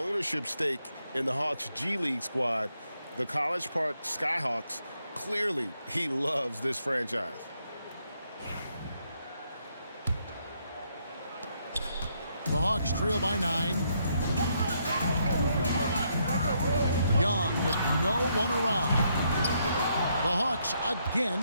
stake in the Hawks G League squad, the College Park Skyhawks. Clearly, he loves this franchise. The Hawks trail by 9. Young with no one around. The Hawks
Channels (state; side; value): inverted; both; correlation -0.75